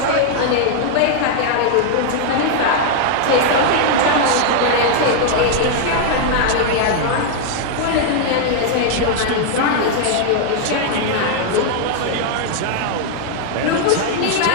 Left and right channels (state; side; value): different; both; correlation 0.00